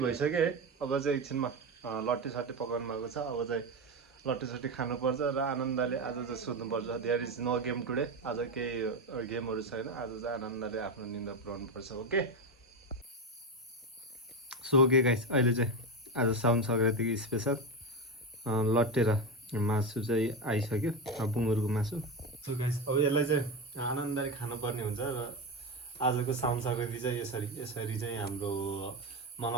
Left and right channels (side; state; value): both; normal; correlation 0.15